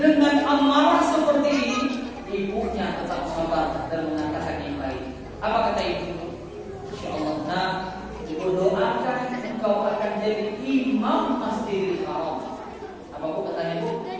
amarah seperti ini, ibunya tetap sabar dan mengatakan yang baik. Apa kata ibu? Insya Allah, nah, ibu doakan engkau akan jadi imam Masjidil Haram. Apa bu katanya ibu?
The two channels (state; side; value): identical; both; correlation 1.00